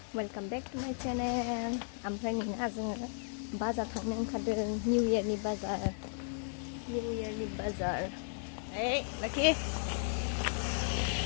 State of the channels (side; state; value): right; silent; 54 dB below the other